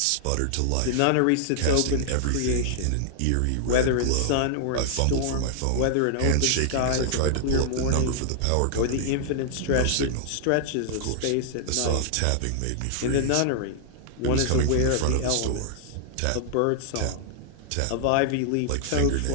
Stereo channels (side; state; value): both; different; correlation -0.01